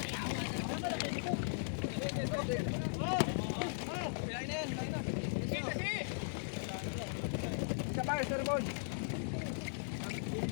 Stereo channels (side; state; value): right; silent; digital silence